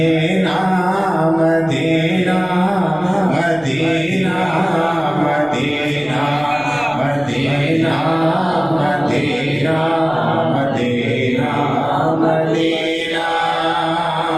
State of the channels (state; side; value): noise; right; rumble, 25 dB below the sound